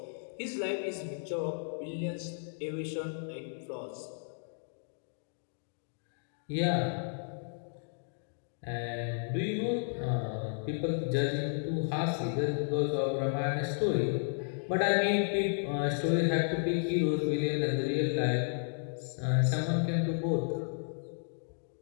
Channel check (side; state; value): right; silent; digital silence